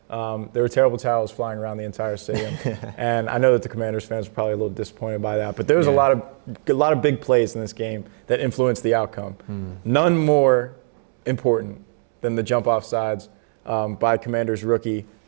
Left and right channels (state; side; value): silent; left; digital silence